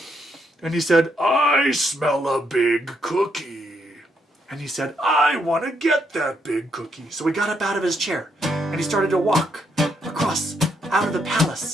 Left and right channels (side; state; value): both; normal; correlation 0.76